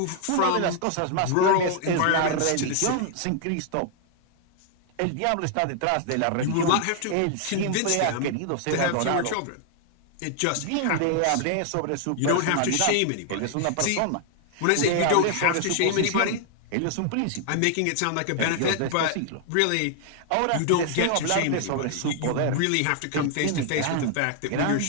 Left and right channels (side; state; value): both; different; correlation 0.00